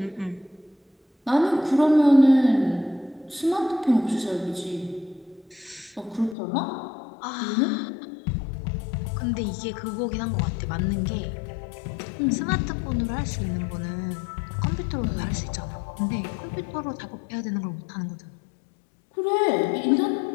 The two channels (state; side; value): drops out; right; at 6.4 s